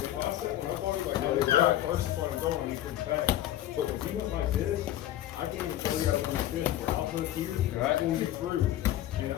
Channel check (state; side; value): quieter; right; 13.1 dB